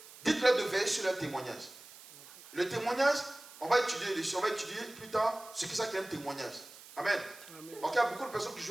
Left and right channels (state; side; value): noise; right; hiss, 18 dB below the sound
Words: dites-leur de veiller sur leur témoignage. Le témoignage, on va étudier dessus, on va étudier plus tard ce que c'est qu'un témoignage. Amen. Amen. Donc, il y a beaucoup de personnes qui